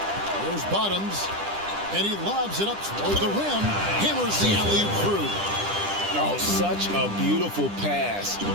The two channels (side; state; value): left; late; 10 ms